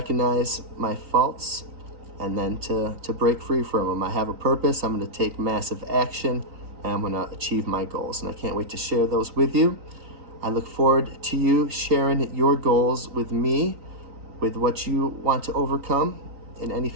my faults and then to break free from them. I have a purpose. I'm going to take massive action, and I'm going to achieve my goals, and I can't wait to share those with you. I look forward to you sharing your goals with me, with what you want to overcome in any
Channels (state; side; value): late; left; 3.9 ms